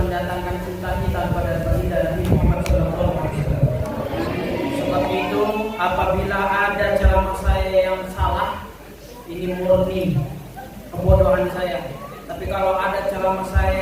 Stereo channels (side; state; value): both; identical; correlation 1.00